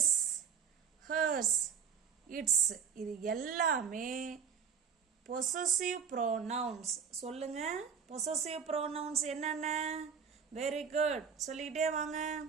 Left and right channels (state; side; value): quieter; left; 6.7 dB